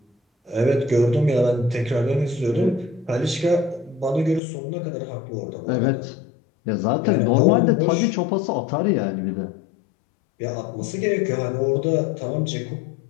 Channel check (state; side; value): drops out; right; at 4.4 s